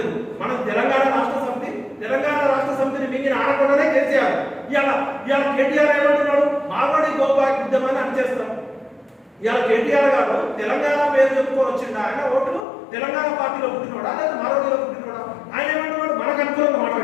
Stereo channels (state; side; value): drops out; right; at 12.7 s